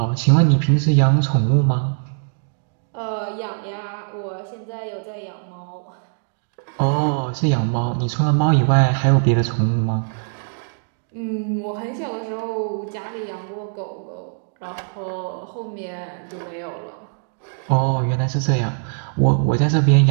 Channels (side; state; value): left; silent; digital silence